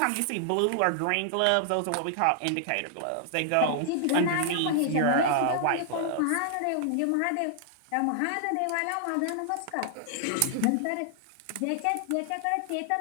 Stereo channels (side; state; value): both; different; correlation -0.01